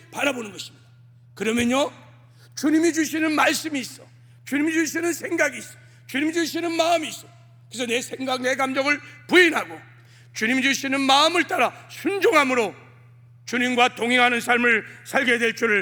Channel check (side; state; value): both; identical; correlation 1.00